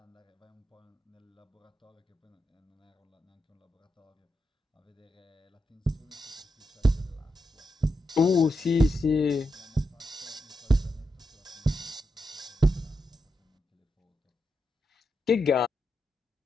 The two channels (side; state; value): both; normal; correlation 0.86